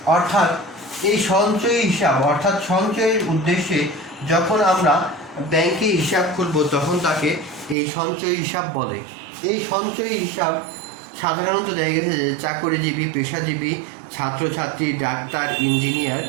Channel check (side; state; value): left; drops out; at 7.8 s